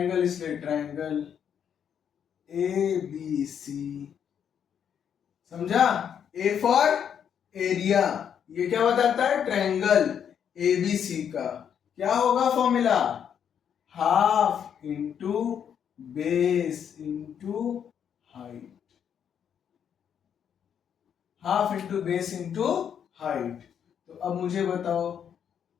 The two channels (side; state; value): right; quieter; 8.3 dB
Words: इसलिए ट्रायंगल ABC। समझा? ए फॉर एरिया, ये क्या बताता है? ट्रायंगल ABC का क्या होगा formula? Half into base into height. Half into base into height. तो अब मुझे बताओ,